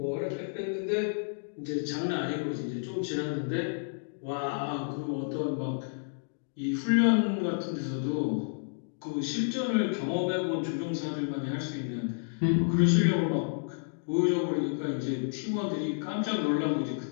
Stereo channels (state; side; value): silent; right; digital silence